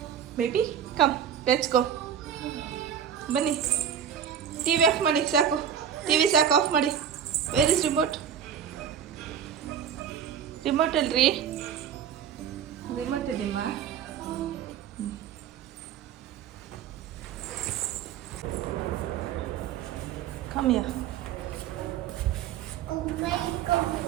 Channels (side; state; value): left; quieter; 8.6 dB